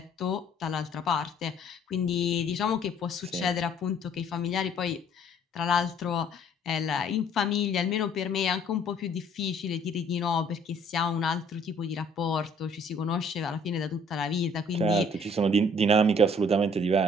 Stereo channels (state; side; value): normal; both; correlation 0.58